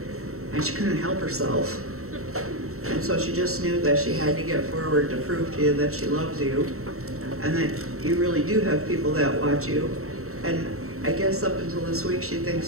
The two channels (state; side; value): late; left; 0.63 ms